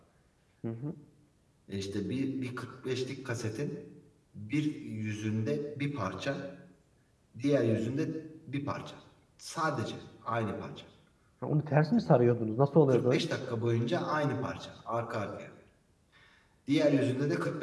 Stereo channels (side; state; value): both; identical; correlation 1.00